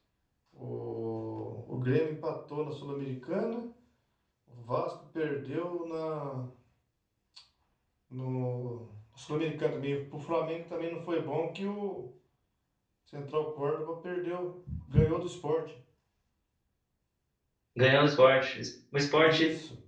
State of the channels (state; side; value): identical; both; correlation 1.00